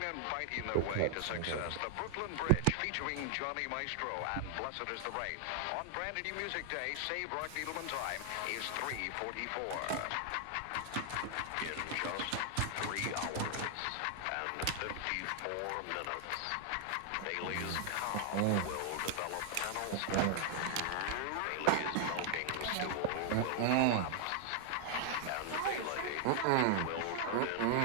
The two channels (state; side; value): different; both; correlation 0.00